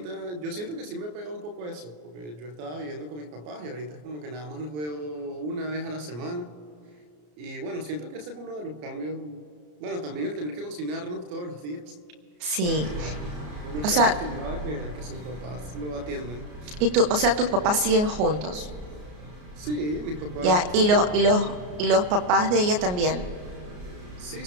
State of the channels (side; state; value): left; late; 33 ms